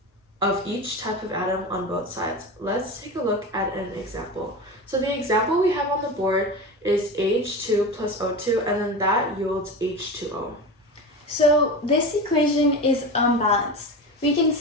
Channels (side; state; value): both; normal; correlation 0.26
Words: of each type of atom on both sides. Let's take a look at an example. So the example we have on the board is H2 plus O2, and then that yields H2O. So this equation is unbalanced. We can